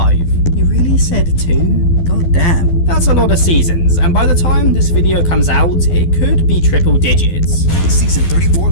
You really said 2? God damn. That's a lot of seasons, and by the time this video comes out, it could be triple digits. Season 34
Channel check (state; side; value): late; right; 12 ms